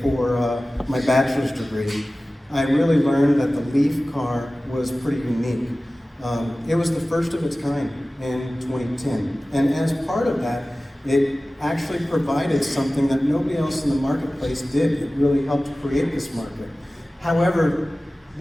my bachelor's degree. I really learned that the leaf car was pretty unique. It was the first of its kind in 2010. And as part of that, it actually provided something that nobody else in the marketplace did. It really helped create this market. However,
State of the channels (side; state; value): both; normal; correlation 0.97